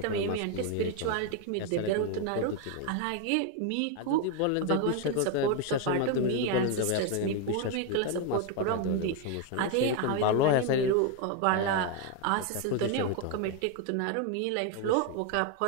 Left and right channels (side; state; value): both; different; correlation 0.01